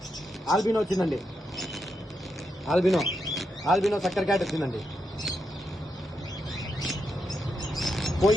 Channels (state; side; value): normal; both; correlation 0.83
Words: ఆల్బినో వచ్చిందండి, ఆల్బినో సక్కర్ క్యాట్ వచ్చిందండి.